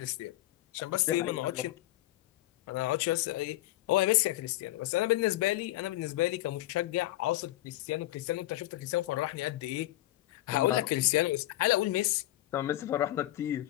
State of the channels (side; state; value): right; quieter; 16.2 dB